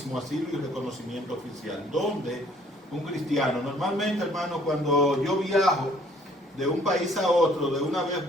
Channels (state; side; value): normal; both; correlation 0.60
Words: asilo y reconocimiento oficial. ¿Dónde un cristiano? Normalmente, hermano, cuando yo viajo de un país a otro, de una vez